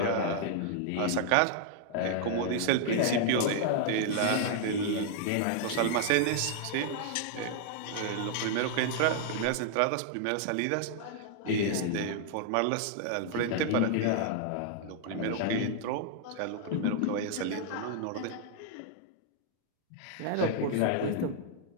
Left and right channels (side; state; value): both; different; correlation -0.01